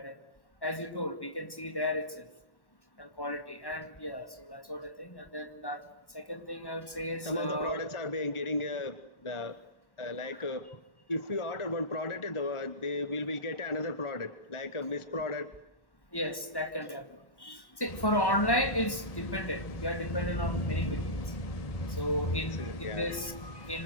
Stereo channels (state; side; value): late; right; 1.1 ms